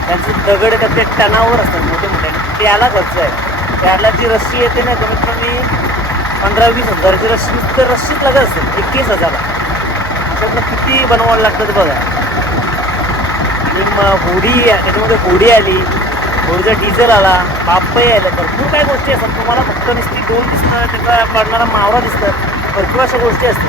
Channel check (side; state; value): both; normal; correlation 0.44